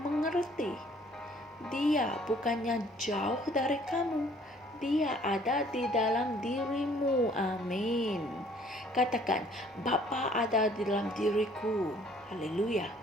Dia bukannya jauh dari kamu. Dia ada di dalam dirimu. Amin. Katakan, Bapa ada di dalam diriku. Haleluya.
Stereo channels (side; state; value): both; normal; correlation 0.58